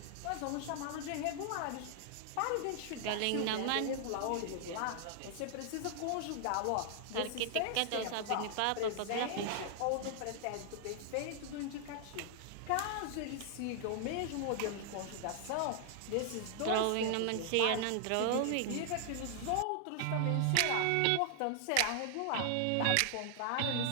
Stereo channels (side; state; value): both; different; correlation 0.00